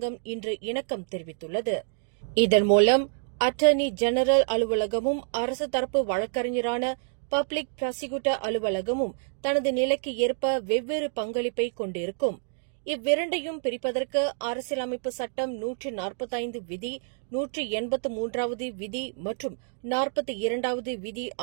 இன்று இணக்கம் தெரிவித்துள்ளது. இதன் மூலம் அட்டர்னி ஜெனரல் அலுவலகமும் அரசு தரப்பு வழக்கறிஞரான பப்ளிக் ப்ராசிக்யூட்டர் அலுவலகமும் தனது நிலைக்கு ஏற்ப வெவ்வேறு பங்களிப்பை கொண்டிருக்கும். இவ்விரண்டையும் பிரிப்பதற்கு அரசியலமைப்பு சட்டம் 145 விதி, 183வது விதி மற்றும் 42வது விதி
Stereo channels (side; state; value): left; silent; digital silence